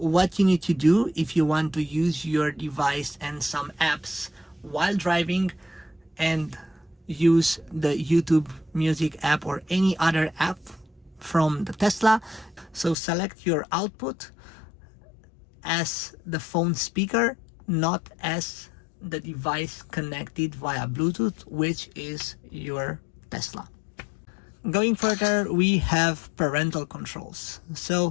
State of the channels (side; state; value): right; drops out; at 13.0 s